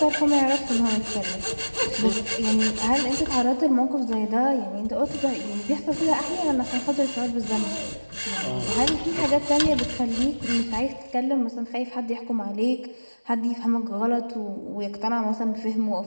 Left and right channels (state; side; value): inverted; both; correlation -1.00